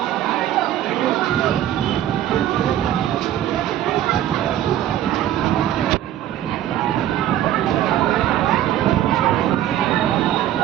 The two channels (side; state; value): left; quieter; 12.1 dB